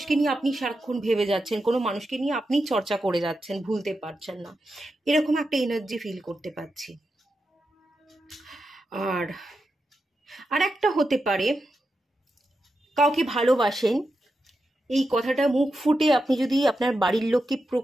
নিয়ে আপনি সারাক্ষণ ভেবে যাচ্ছেন, কোনো মানুষকে নিয়ে আপনি চর্চা করে যাচ্ছেন, ভুলতে পারছেন না, এরকম একটা এনার্জি ফিল করতে পারছি। আর একটা হতে পারে, কাউকে ভালোবাসেন, এই কথাটা মুখ ফুটে আপনি যদি আপনার বাড়ির লোককে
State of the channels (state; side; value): normal; both; correlation 0.88